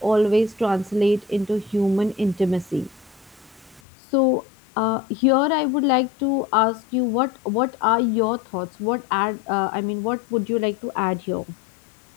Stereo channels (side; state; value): right; drops out; at 3.8 s